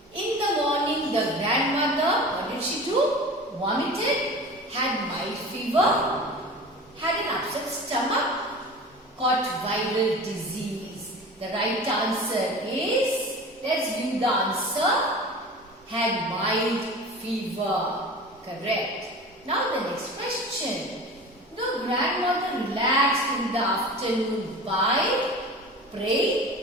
In the morning, the grandmother, what did she do? Vomited, had mild fever, had an upset stomach, caught viral disease. The right answer is, let's view the answer, had mild fever. Correct. Now the next question. The grandmother relaxed in the afternoon by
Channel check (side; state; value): both; normal; correlation 0.36